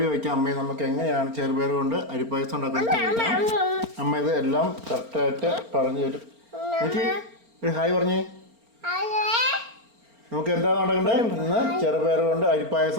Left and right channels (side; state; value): left; late; 4.4 ms